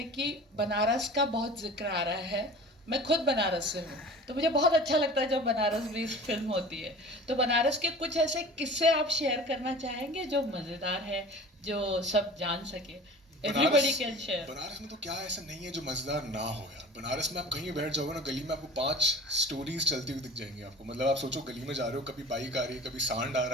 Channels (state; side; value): normal; both; correlation 0.41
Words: कि बनारस का बहुत जिक्र आ रहा है, मैं खुद बनारस से हूँ, तो मुझे बहुत अच्छा लगता है जब बनारस में इस फिल्म होती है। तो बनारस के कुछ ऐसे किस्से आप शेयर करना चाहेंगे जो मज़ेदार है, जो सब जान सके? Everybody can share. बनारस में तो क्या ऐसा नहीं है जो मजेदार ना हो यार। बनारस में आप कहीं बैठ जाओगे ना गली में, आपको 5 स्टोरीज चलती हुई दिख जाएंगी आपको। मतलब आप सोचो गली में जा रहे हो, कभी बाइक आ रही है, कभी सांड आ